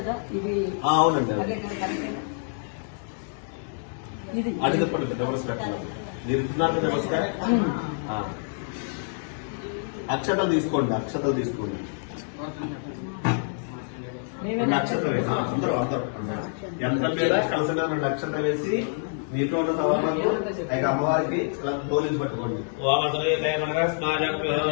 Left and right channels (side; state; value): right; silent; digital silence